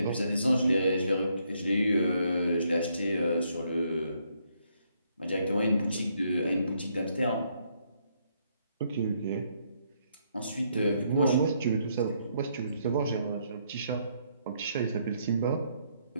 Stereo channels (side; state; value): both; inverted; correlation -0.73